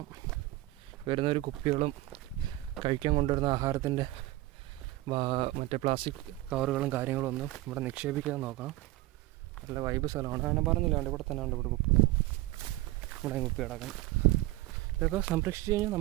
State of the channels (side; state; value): left; quieter; 17.7 dB